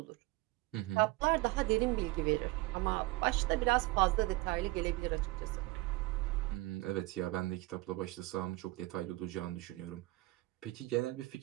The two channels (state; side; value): quieter; left; 20.7 dB